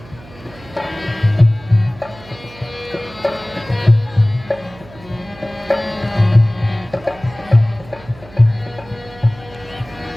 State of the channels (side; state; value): right; noise; hum, 21 dB below the sound